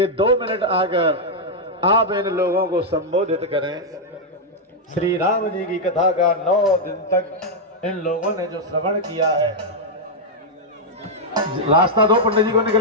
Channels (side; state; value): both; normal; correlation -0.03